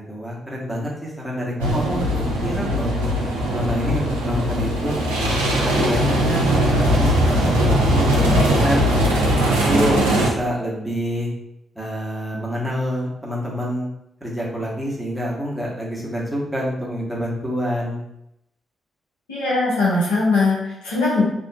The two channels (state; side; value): normal; both; correlation 0.66